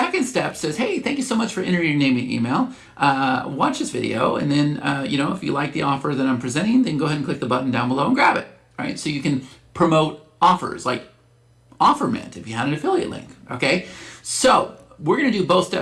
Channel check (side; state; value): both; identical; correlation 1.00